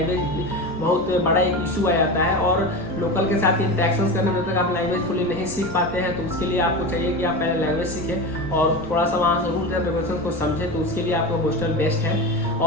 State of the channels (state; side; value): noise; right; rumble, 20 dB below the sound